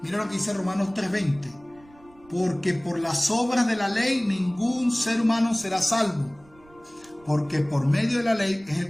Mira lo que dice Romanos 3:20. Porque por las obras de la ley ningún ser humano será salvo, porque por medio de la ley es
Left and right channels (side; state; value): right; noise; rumble, 27 dB below the sound